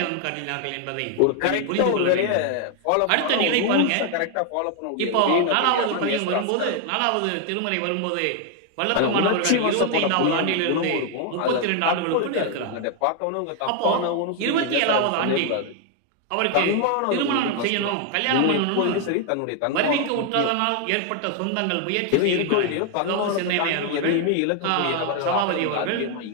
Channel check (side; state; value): both; different; correlation 0.01